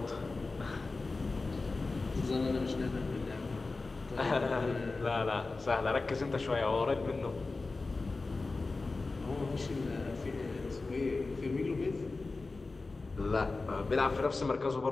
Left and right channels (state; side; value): quieter; right; 3.6 dB